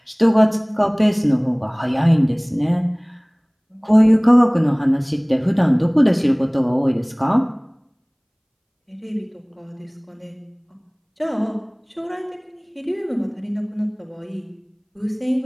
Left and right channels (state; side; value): identical; both; correlation 1.00